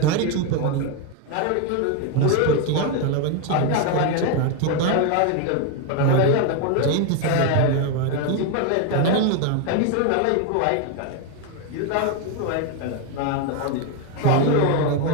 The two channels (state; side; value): different; both; correlation 0.01